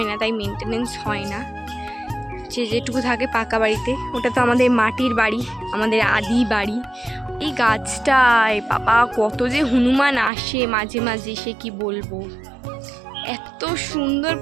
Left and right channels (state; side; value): drops out; left; at 10.3 s